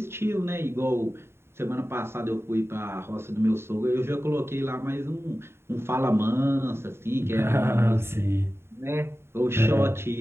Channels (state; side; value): late; left; 0.12 ms